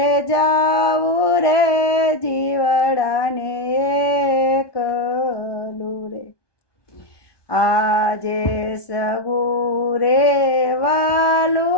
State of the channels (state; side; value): late; right; 1.2 ms